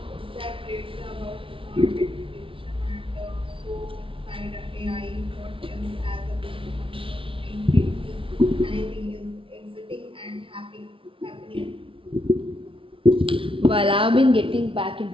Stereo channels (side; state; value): left; late; 0.25 ms